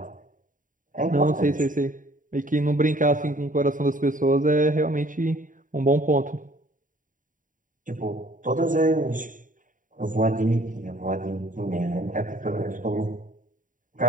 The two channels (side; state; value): left; late; 0.38 ms